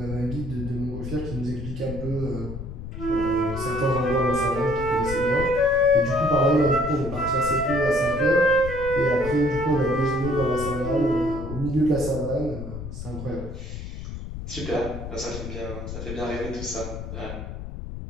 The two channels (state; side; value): noise; left; rumble, 8 dB below the sound